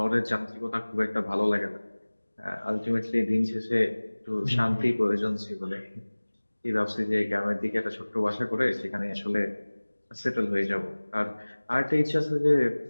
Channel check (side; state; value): both; inverted; correlation -1.00